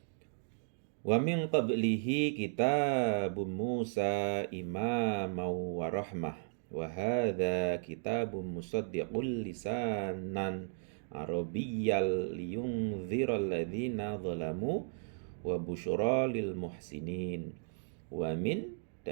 Wa min qablihi kitabun Musa imaman wa rahmah wa hadza kitabun musaddiqul lisanan arabiyyal liyunziral ladzina zalamu wa busyra lil muhsinin. Wa min,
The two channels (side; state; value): left; silent; digital silence